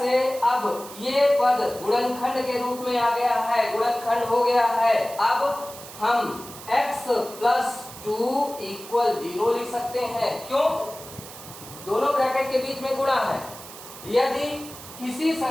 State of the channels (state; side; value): noise; right; hiss, 15 dB below the sound